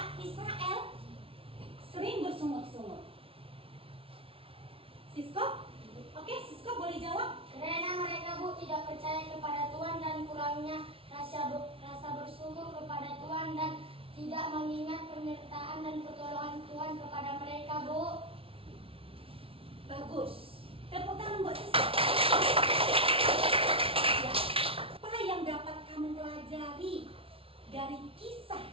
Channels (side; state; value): left; late; 0.26 ms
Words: Israel sering bersungut-sungut? Sisko? Oke, Sisko boleh jawab? Karena mereka tidak percaya kepada Tuhan dan kurangnya rasa bersyukur kepada Tuhan dan tidak mengingat penyertaan dan pertolongan Tuhan kepada mereka, Bu. Bagus. Tepuk tangan buat Sisko. Ya. Apa yang dapat kamu pelajari dari kisah